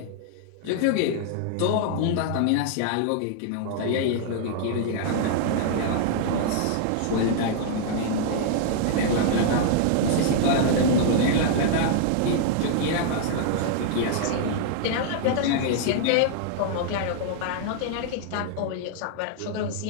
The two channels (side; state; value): both; different; correlation -0.01